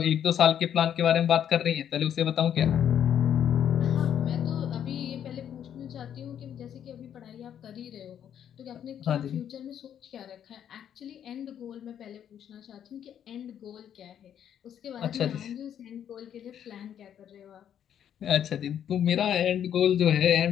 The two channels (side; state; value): right; quieter; 9.5 dB